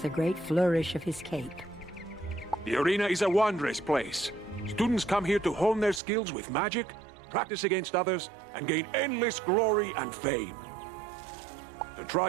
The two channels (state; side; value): drops out; left; at 6.0 s